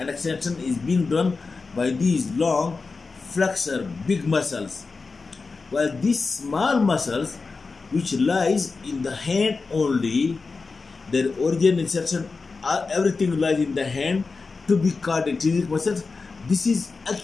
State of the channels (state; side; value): quieter; right; 4.2 dB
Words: extension is being done by these long flexor big muscles, while these small muscles which lies in the hand only, their origin, insertion, everything lies in the hand, to be called intrinsic muscles. This is